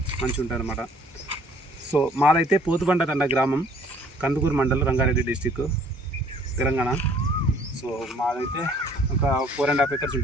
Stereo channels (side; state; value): both; normal; correlation 0.58